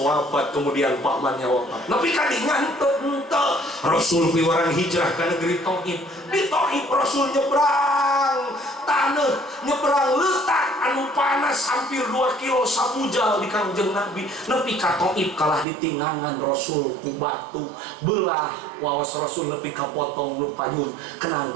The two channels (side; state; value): left; drops out; at 15.7 s